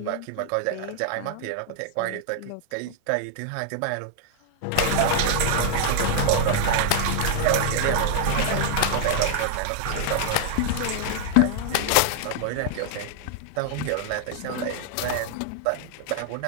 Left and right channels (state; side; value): different; both; correlation 0.00